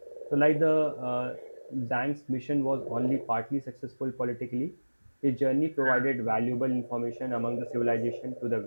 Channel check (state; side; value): inverted; both; correlation -1.00